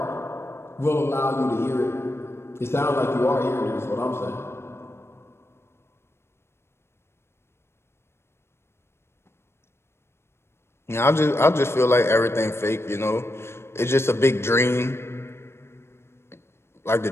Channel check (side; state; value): right; late; 0.12 ms